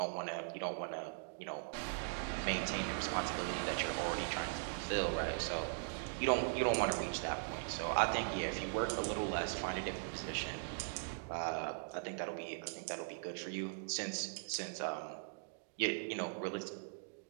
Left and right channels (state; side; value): silent; left; digital silence